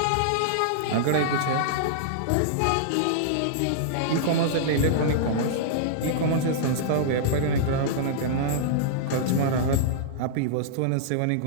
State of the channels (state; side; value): different; both; correlation -0.02